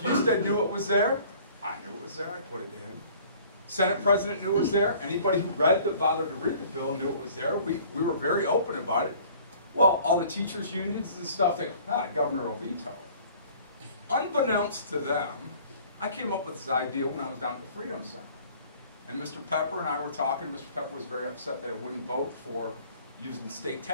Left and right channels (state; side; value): inverted; both; correlation -0.52